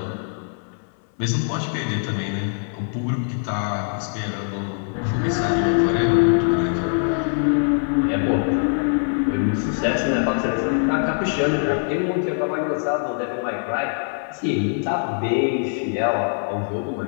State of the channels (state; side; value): silent; right; 61 dB below the other